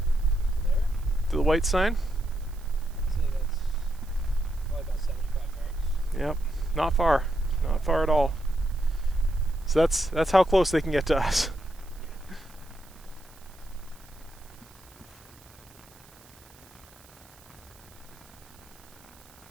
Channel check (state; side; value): noise; right; hiss, 25 dB below the sound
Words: to the white sign. I'd say that's probably about 75 yards. Yep, not far, not far at all. So that's how close they can get to us.